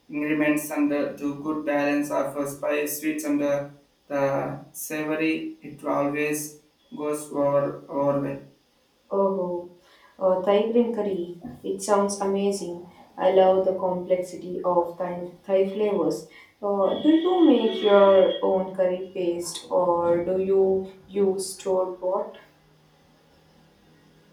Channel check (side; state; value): both; identical; correlation 1.00